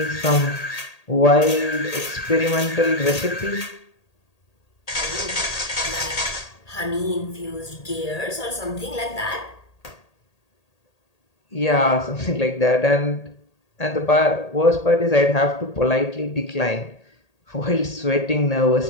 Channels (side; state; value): right; late; 1.8 ms